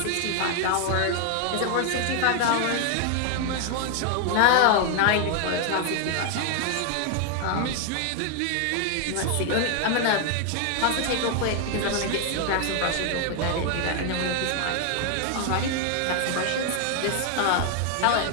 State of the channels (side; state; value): both; different; correlation 0.00